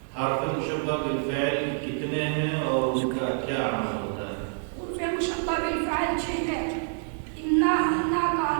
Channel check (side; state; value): left; silent; digital silence